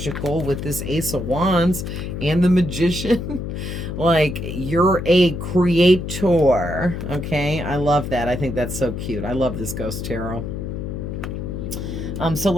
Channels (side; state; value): left; noise; hum, 5 dB below the sound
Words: with this Ace of Wands and the Magician. Like, you're a creator. Okay, I love that. I think that's so cute. I love this Ghost Tarot. So